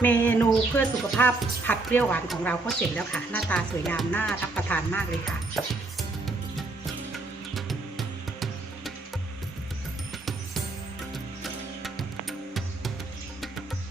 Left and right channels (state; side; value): quieter; left; 3.3 dB